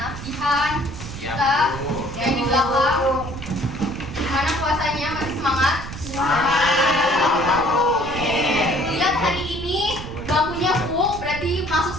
Jihan, kita yang di belakang. Gimana puasanya? Masih semangat? Lihat hari ini bangkunya full, berarti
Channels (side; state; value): right; noise; rumble, 10 dB below the sound